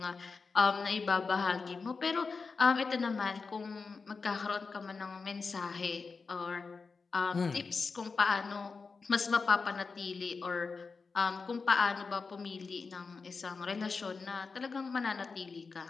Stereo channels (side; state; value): right; quieter; 4.6 dB